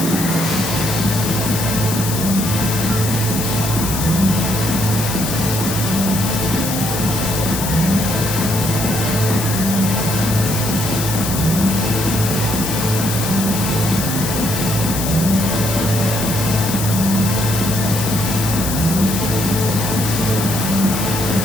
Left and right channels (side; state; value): left; noise; hiss, 5 dB below the sound